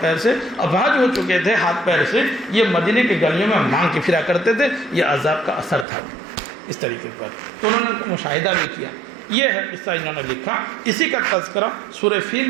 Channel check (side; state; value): left; drops out; at 5.9 s